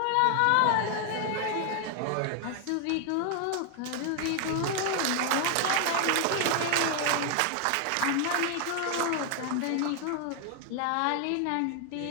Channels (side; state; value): both; different; correlation 0.00